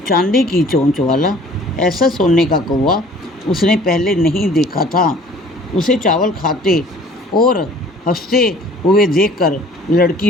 चांदी की चोंच वाला, ऐसा सोने का कौवा उसने पहले नहीं देखा था। उसे चावल खाते और हंसते हुए देखकर लड़की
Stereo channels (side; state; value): both; normal; correlation 0.51